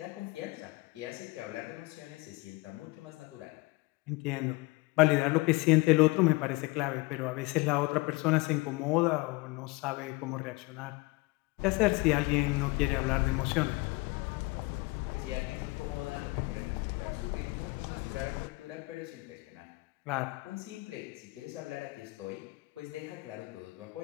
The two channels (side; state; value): right; quieter; 23.9 dB